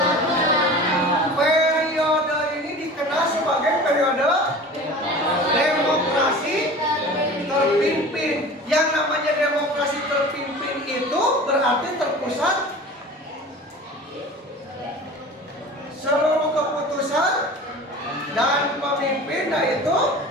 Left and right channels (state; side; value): normal; both; correlation 0.38